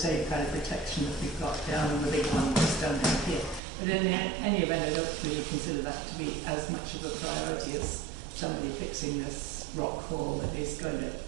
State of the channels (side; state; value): left; drops out; at 3.6 s